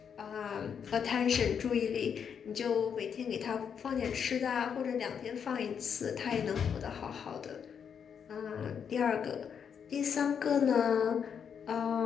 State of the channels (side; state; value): right; quieter; 7.4 dB